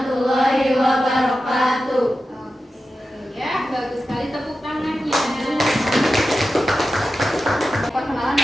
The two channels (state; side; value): normal; both; correlation 0.92